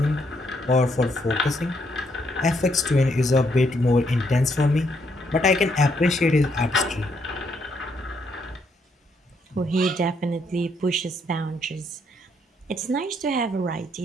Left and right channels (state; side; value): normal; both; correlation 0.74